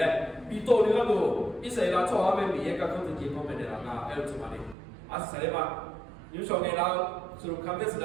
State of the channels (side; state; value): left; drops out; at 4.8 s